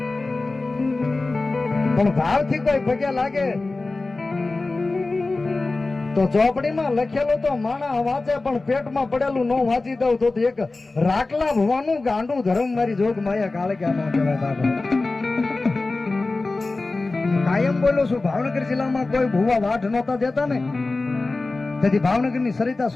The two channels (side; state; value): right; quieter; 3.4 dB